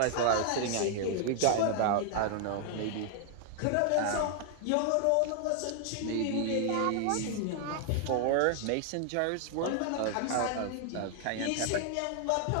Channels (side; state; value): both; different; correlation 0.00